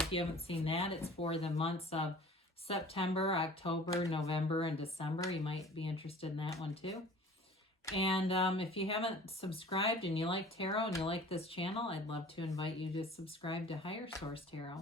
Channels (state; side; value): normal; both; correlation 0.45